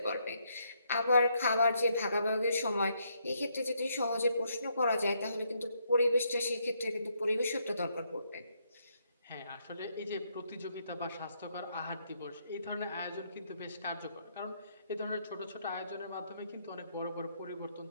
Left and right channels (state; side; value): inverted; both; correlation -0.74